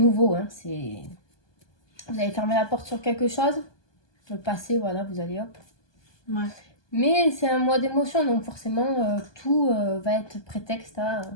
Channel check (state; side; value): late; right; 1.2 ms